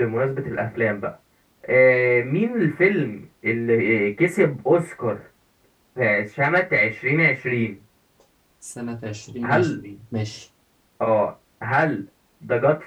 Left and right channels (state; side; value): identical; both; correlation 1.00